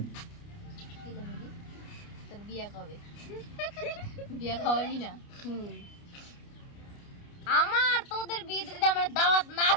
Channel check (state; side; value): late; right; 29 ms